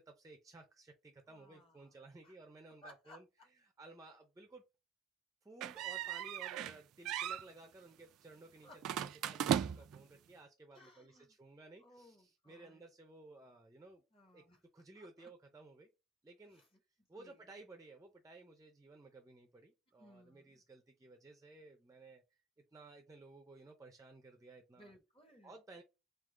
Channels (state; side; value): quieter; left; 8.3 dB